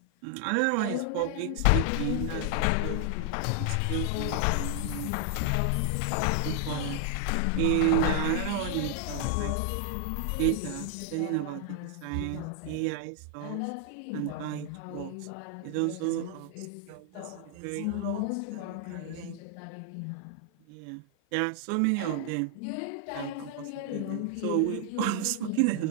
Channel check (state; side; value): different; both; correlation 0.00